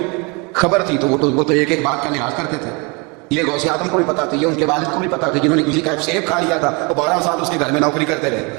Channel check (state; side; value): quieter; left; 29.8 dB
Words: خبر تھی. تو وہ تو ایک ایک بات کا لحاظ کرتے تھے. یہ غوث اعظم کو بھی پتا تھی، یہ ان کے والد کو بھی پتا تھی جنہوں نے کسی کا سیب کھا لیا تھا. وہ 12 سال اس کے گھر میں نوکری کرتے